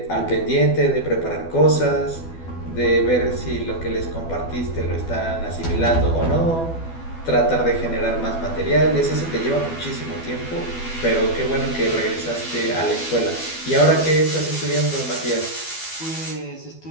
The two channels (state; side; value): late; right; 12 ms